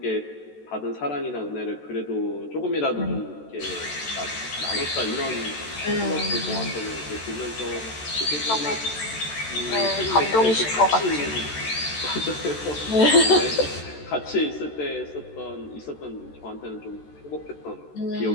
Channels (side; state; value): right; late; 14 ms